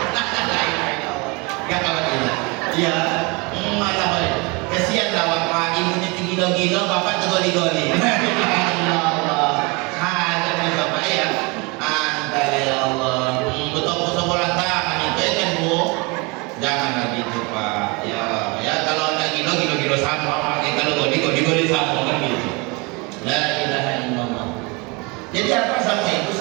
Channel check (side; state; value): left; quieter; 28.1 dB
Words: Gak kawan kita. Iya, malah balik. Kesian lah bapak, ibu ini gila-gila, bapak tuh goli-goli. Allah, ada bapak ya. Anda ya Allah, betul-betul bola tangan itu ya kan bu? Jangan gitu pak. Ya kalau anda gila sama, kalau goli sama kan gitu. La ilaha illallah. Jadi apa sama itu